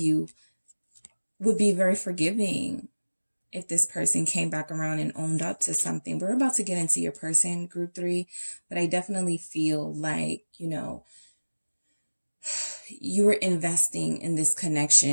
would be very forgiving if this person came back around and owned up to something. We're about to get into your person, group 3, but I definitely feel like, you know, you were investing in this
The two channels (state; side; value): inverted; both; correlation -1.00